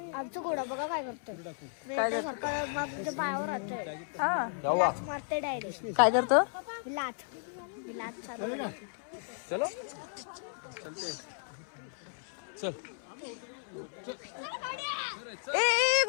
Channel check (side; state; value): right; silent; 55 dB below the other